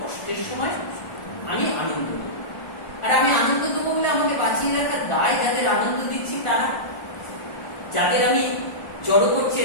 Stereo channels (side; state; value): right; late; 1.4 ms